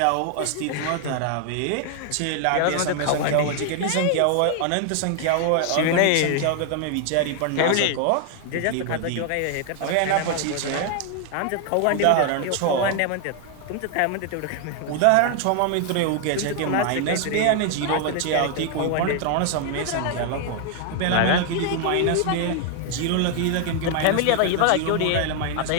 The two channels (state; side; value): different; both; correlation 0.00